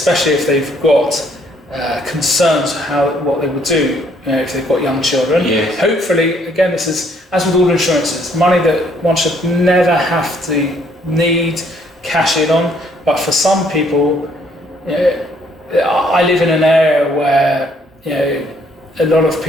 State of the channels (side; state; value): both; normal; correlation 0.66